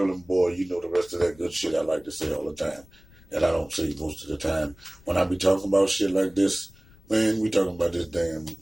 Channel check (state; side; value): noise; left; rumble, 25 dB below the sound